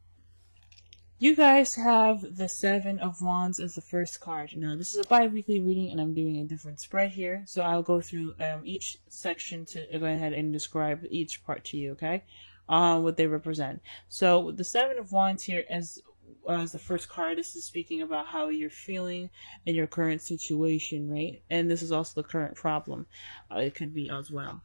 You guys have the Seven of Wands as the first card. Now, this is a bi-weekly reading, and I'm doing a different spread here. So I'll go through each section to go ahead and describe each part to you, okay? What they represent. So the Seven of Wands here as the first card, this is speaking about how you're feeling in your current situation, right? And this is also the current problem. It could be as well.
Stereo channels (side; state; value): both; inverted; correlation -1.00